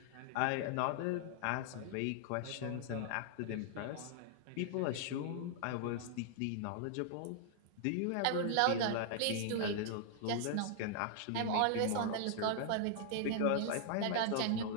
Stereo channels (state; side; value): different; both; correlation -0.01